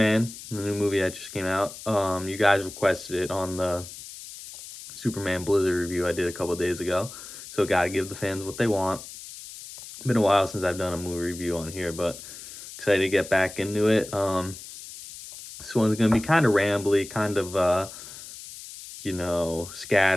the new movie that just came out. You guys requested it on the Superman Blizzard review I did a couple days ago. So, gotta give the fans what they want. Been a while since I've done a movie review on here, but excited to get back into it. This one's gonna be kind of rambly, kind of,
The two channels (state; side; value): noise; left; hiss, 14 dB below the sound